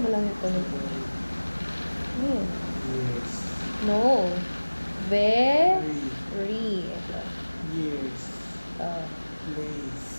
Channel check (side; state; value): both; inverted; correlation -1.00